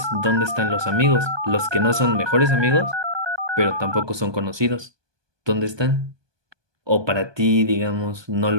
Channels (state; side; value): late; left; 1.2 ms